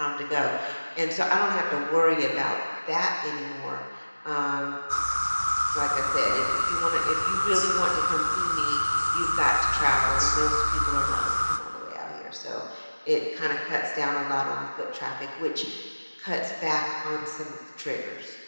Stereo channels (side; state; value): both; inverted; correlation -1.00